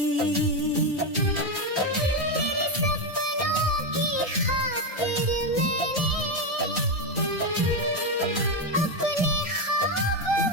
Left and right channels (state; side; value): normal; both; correlation 0.08